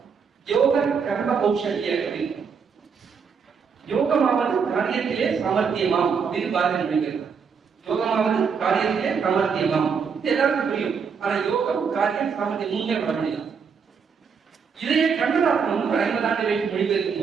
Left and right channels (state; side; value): quieter; left; 6.1 dB